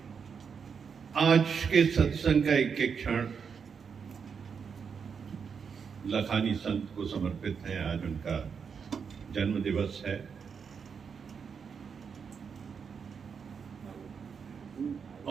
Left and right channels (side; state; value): left; quieter; 6.3 dB